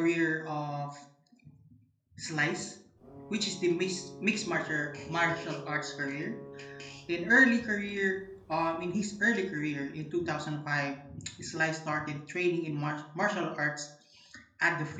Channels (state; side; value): identical; both; correlation 1.00